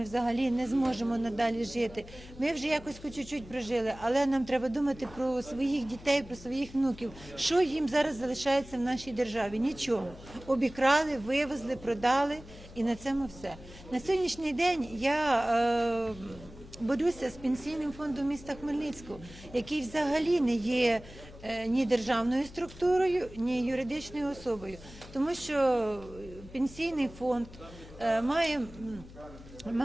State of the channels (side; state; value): left; noise; hum, 18 dB below the sound